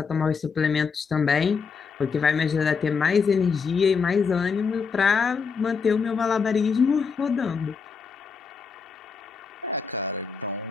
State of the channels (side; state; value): right; quieter; 5.5 dB